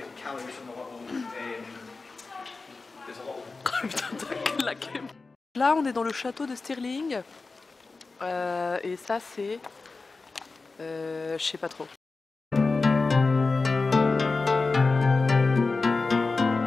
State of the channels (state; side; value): quieter; right; 3.9 dB